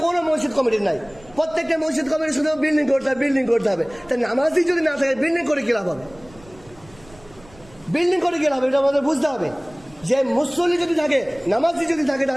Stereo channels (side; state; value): right; noise; rumble, 25 dB below the sound